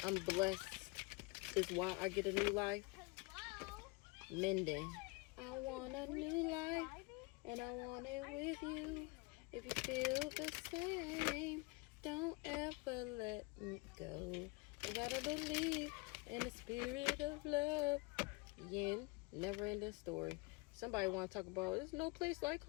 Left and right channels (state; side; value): quieter; right; 26.4 dB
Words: I'm blessed is why I get a new life. Minden. I want a new life, and I want it with you. If you feel the same, don't ever let me go. You gotta believe in the spirit of love. Yin, never ending story. Somebody want to talk about, there's no place like